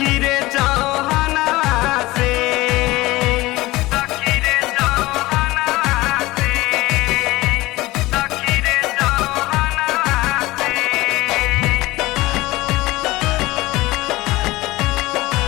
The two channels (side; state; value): right; quieter; 19.3 dB